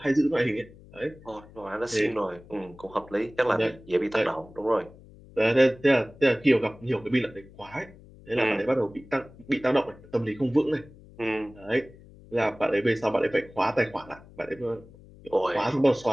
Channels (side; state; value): left; noise; hum, 22 dB below the sound